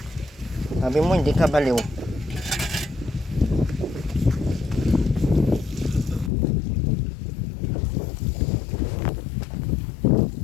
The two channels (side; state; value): right; drops out; at 6.3 s